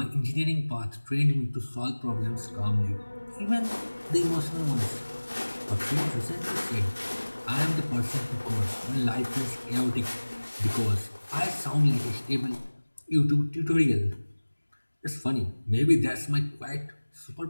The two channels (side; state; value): both; inverted; correlation -1.00